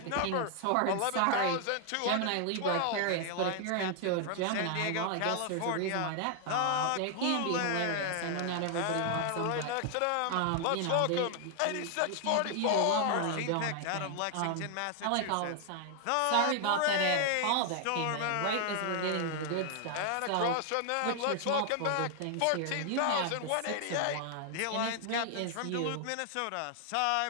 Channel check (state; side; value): different; both; correlation 0.00